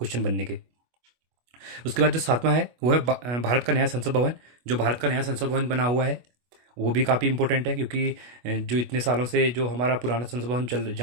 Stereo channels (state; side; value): late; left; 24 ms